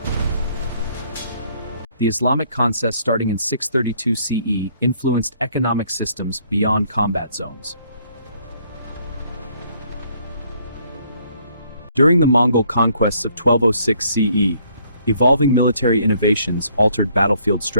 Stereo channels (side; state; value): both; inverted; correlation -0.65